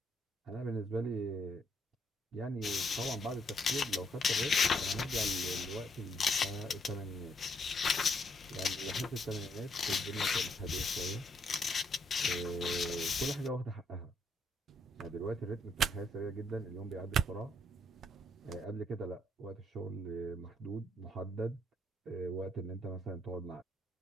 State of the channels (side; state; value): both; normal; correlation 0.72